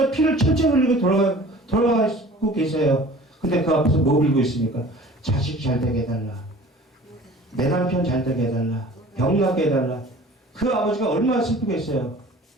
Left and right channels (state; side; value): normal; both; correlation 0.45